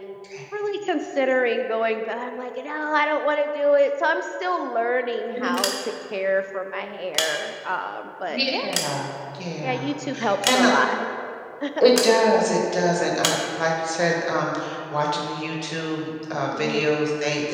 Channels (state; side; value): identical; both; correlation 1.00